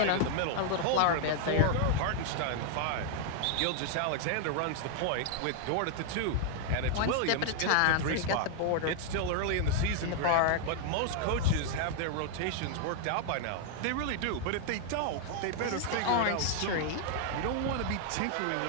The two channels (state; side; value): different; both; correlation 0.00